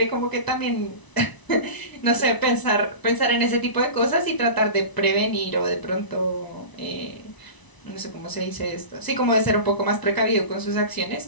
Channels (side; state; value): right; late; 1.0 ms